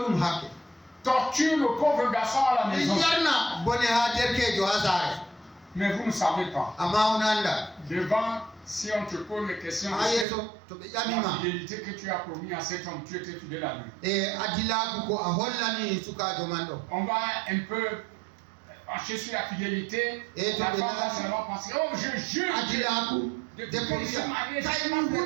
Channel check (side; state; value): left; drops out; at 10.2 s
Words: Torture le pauvre garçon à la maison. Mais vous ne savez pas. Devant, si on te pose les questions de la fidélité que tu as promis à cet homme, tu étais fidèle à lui. On va un peu marcher sur la fidélité. La femme va seulement penser, oh je jure de ce mariage, je m'en